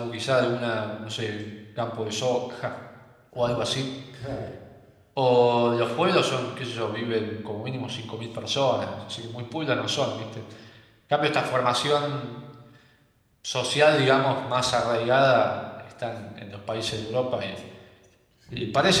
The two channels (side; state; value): both; identical; correlation 1.00